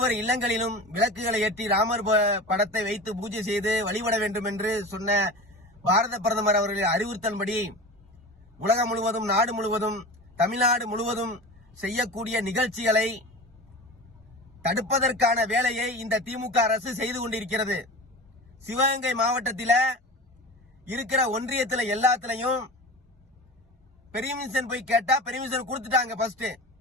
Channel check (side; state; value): both; normal; correlation 0.33